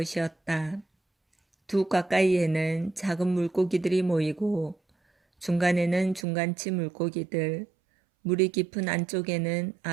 두 가까이에는 작은 물고기들이 모이고 중간에는 중간치 물고기들, 물이 깊은 안쪽에는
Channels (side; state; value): left; drops out; at 6.2 s